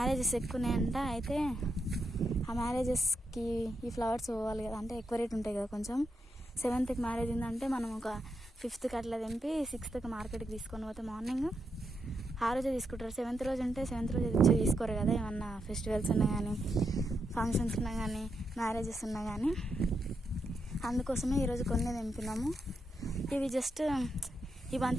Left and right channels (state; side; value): normal; both; correlation 0.83